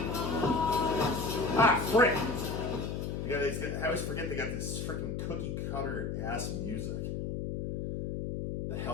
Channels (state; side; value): noise; left; hum, 2 dB below the sound